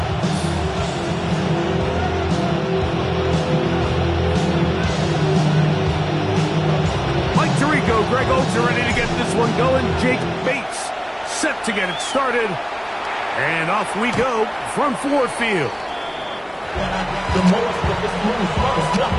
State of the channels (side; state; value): both; identical; correlation 1.00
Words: Mike Tirico, Greg Olsen are ready to get this one going. Jake Bates set to get it started. And off we go from Ford Field. The most of this move is